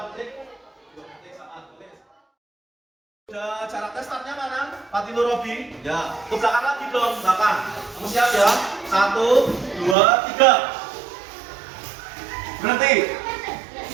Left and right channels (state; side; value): drops out; left; at 10.0 s